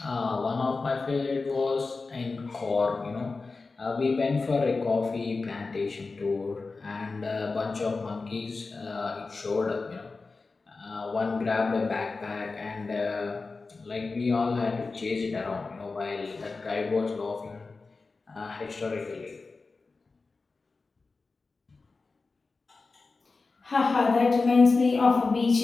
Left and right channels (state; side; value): quieter; right; 4.0 dB